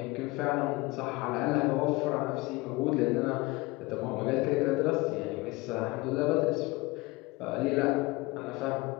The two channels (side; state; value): right; quieter; 22.6 dB